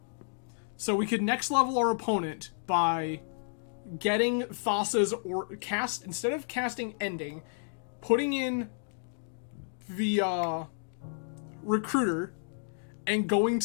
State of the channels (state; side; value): silent; right; digital silence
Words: So we could next level our opponent by getting Thassa's or cast, instead of casting Ending, putting in the Recruiter and going